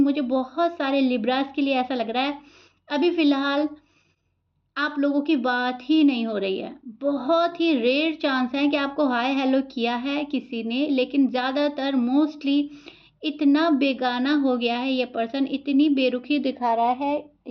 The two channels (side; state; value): both; identical; correlation 1.00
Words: मुझे बहुत सारे लिब्रास के लिए ऐसा लग रहा है अभी फ़िलहाल आप लोगों की बात ही नहीं हो रही है। बहुत ही रेयर चांस है कि आपको हाय हेलो किया है किसी ने, लेकिन ज़्यादातर मोस्टली इतना बेगाना हो गया है ये पर्सन, इतनी बेरुखी दिखा रहा है